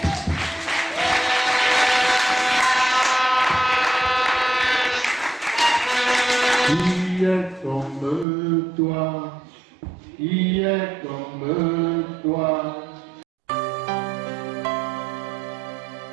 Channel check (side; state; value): left; drops out; at 8.2 s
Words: Qui est comme toi? Qui est comme toi?